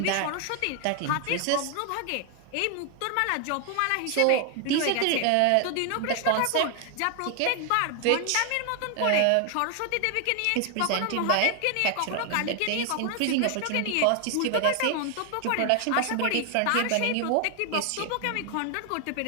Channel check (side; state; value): both; different; correlation 0.00